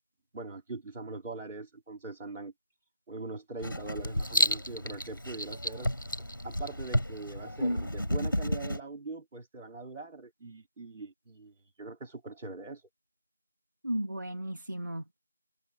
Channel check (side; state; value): both; inverted; correlation -0.74